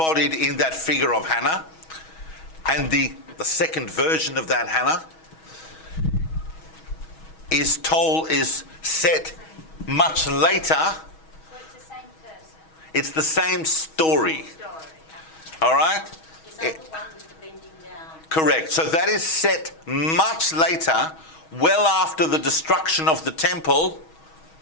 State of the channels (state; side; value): late; right; 6.3 ms